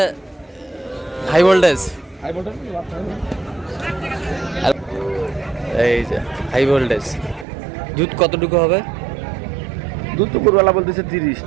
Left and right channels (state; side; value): drops out; left; at 7.5 s